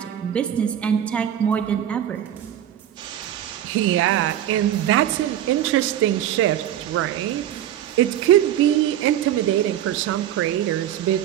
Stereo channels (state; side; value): quieter; left; 11.2 dB